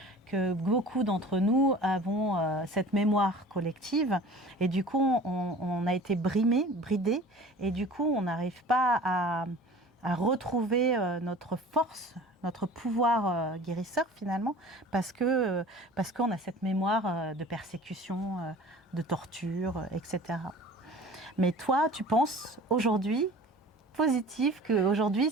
que beaucoup d'entre nous avons cette mémoire collective et du coup on a été bridés et du coup on n'arrive pas à retrouver notre force, notre pouvoir guérisseur finalement parce qu'on a cette mémoire de persécution, de torture, etc. Mais toi, tu penses aujourd'hui positif, qu'aujourd'hui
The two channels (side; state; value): both; normal; correlation 0.43